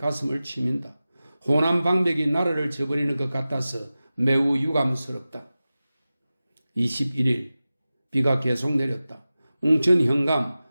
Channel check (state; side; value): inverted; both; correlation -0.95